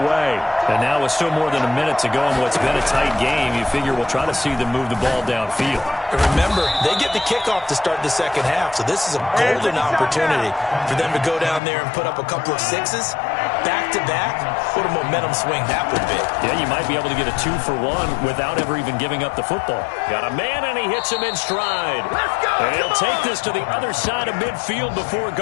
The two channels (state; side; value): drops out; right; at 11.6 s